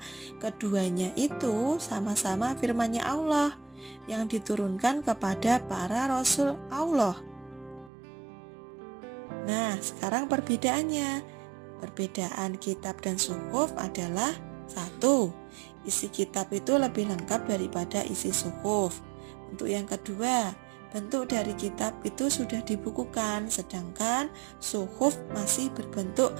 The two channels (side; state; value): left; drops out; at 7.9 s